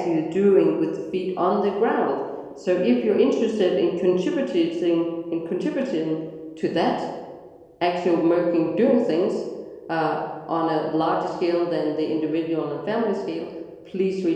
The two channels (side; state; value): both; identical; correlation 1.00